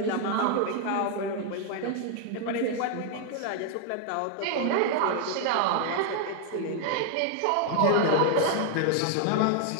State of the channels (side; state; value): both; different; correlation 0.00